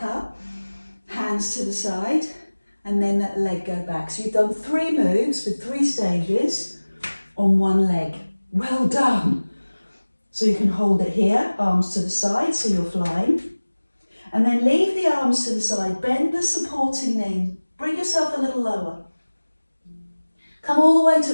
up, hands to the side, and then that leg go back. So you've done 3 moves with 3 stages on 1 leg. Well done. So you can hold it here, arms to the side, so you're flying. And then leave the arms to the side, bend the supporting knee, bring yourself a little lower. Come all the way to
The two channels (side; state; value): both; inverted; correlation -1.00